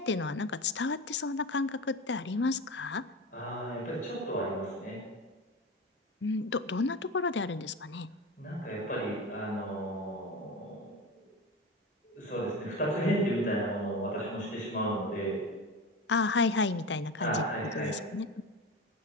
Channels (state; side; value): normal; both; correlation 0.26